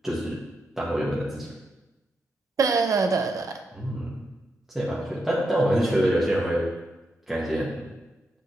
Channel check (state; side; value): normal; both; correlation 0.84